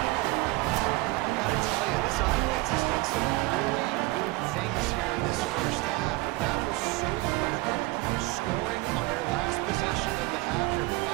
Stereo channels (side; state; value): left; quieter; 21.5 dB